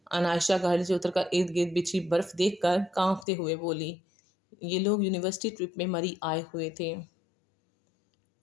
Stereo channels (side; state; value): right; drops out; at 3.2 s